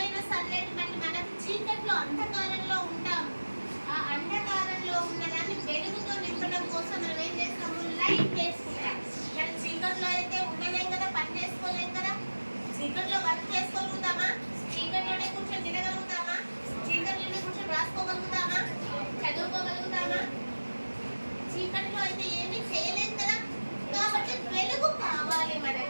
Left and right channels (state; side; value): inverted; both; correlation -1.00